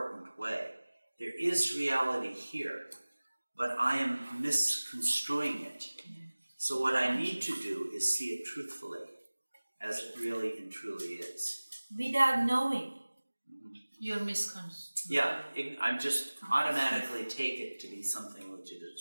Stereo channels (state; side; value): inverted; both; correlation -1.00